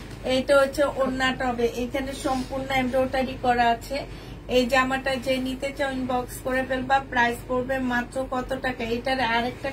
এইটা হচ্ছে ওড়নাটা হবে, এখানে সম্পূর্ণ এমব্রয়ডারি করা আছে। এই জামাটা যে নিতে চাও ইনবক্স করে ফেলবা, প্রাইস পড়বে মাত্র কত টাকা। এটার আরেকটা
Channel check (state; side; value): identical; both; correlation 1.00